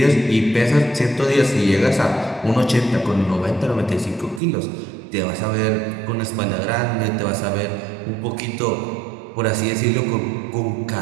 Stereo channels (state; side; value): drops out; left; at 4.4 s